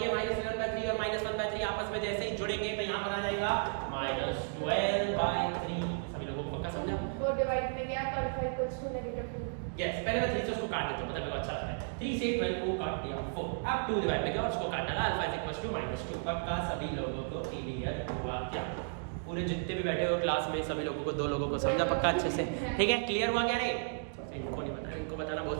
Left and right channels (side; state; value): left; silent; digital silence